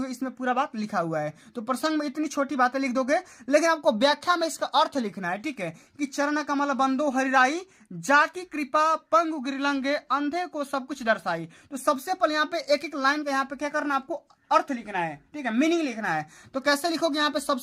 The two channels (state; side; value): identical; both; correlation 1.00